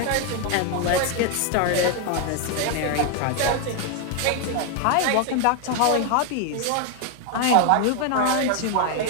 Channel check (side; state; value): both; different; correlation 0.01